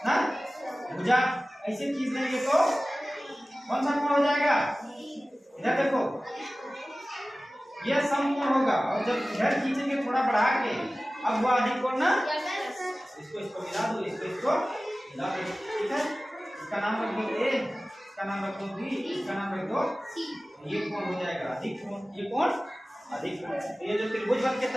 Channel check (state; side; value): normal; both; correlation 0.97